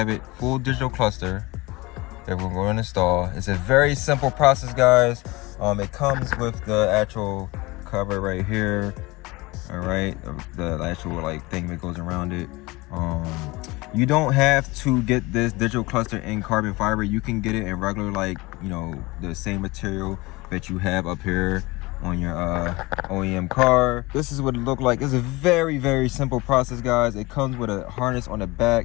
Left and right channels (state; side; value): quieter; right; 22.6 dB